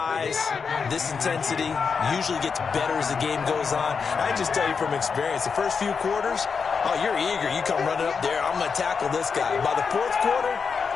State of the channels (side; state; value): right; quieter; 5.6 dB